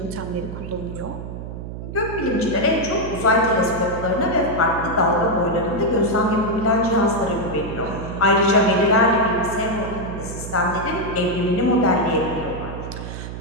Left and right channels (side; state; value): right; noise; hum, 9 dB below the sound